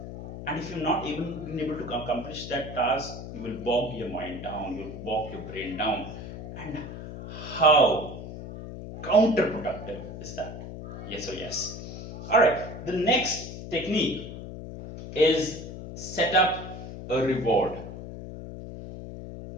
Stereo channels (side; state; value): left; noise; hum, 10 dB below the sound